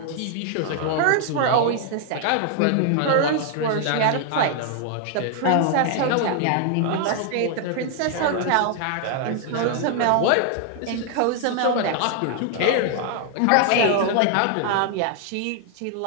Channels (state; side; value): different; both; correlation 0.00